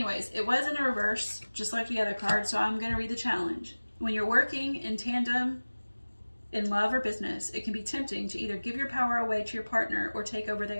it was in a reverse, just like the other card, so I'm going to read the challenge. When you're working in tandem in love or business, it can be tempting to either give your power away to your partner or take over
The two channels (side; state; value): both; inverted; correlation -1.00